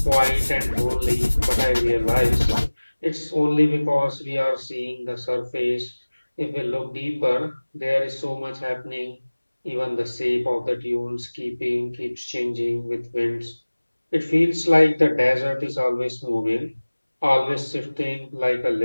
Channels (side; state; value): both; inverted; correlation -1.00